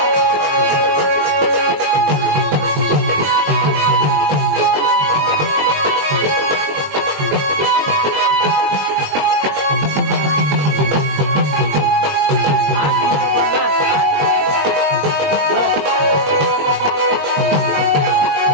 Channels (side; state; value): left; late; 21 ms